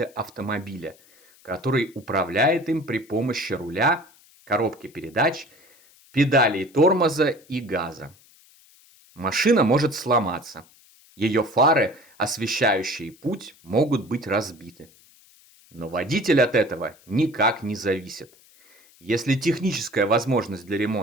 автомобиля, который управляет им при помощи руля, коробки передач, педалей тормоза и газа. Машина может сломаться. Ее фары, освещающие путь, могут быть разбиты. Но водитель от этого никак не зависит. Если техническая возможность для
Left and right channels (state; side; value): noise; left; hiss, 28 dB below the sound